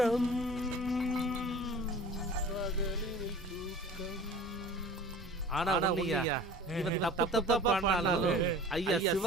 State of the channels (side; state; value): both; normal; correlation 0.43